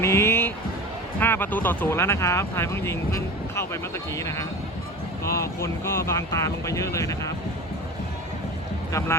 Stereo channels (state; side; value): normal; both; correlation 0.32